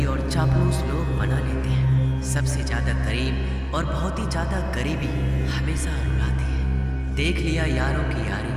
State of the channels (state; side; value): identical; both; correlation 1.00